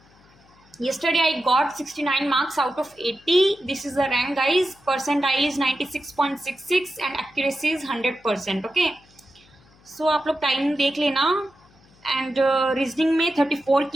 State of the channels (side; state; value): left; noise; hum, 29 dB below the sound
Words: Yesterday I got 69 marks out of 80. This is the rank, guys. Percentile is 96.66 and accuracy is 100%. Okay. So आप लोग टाइम देख लेना. एंड रीजनिंग में 34